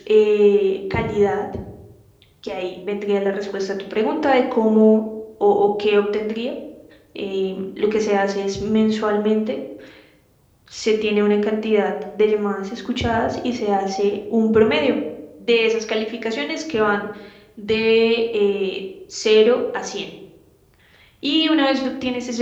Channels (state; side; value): identical; both; correlation 1.00